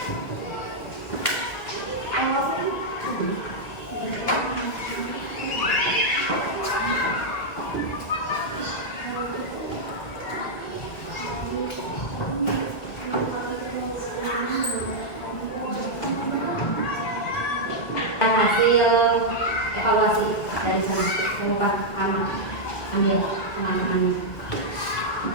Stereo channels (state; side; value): late; right; 1.7 ms